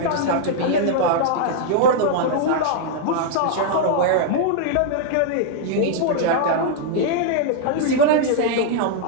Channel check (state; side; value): different; both; correlation -0.01